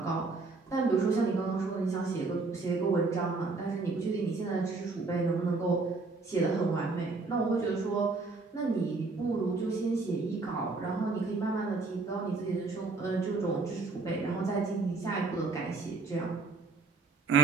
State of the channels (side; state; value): left; quieter; 3.9 dB